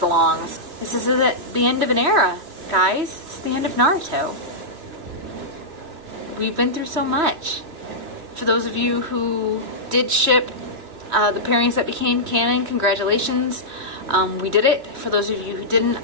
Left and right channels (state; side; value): late; left; 2.7 ms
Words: long. This is the end of an era, guys. It's the end of Naruto. We've been through so much. For those of you who did ship the pairings that became canon, congratulations. We did it. For those of you who didn't,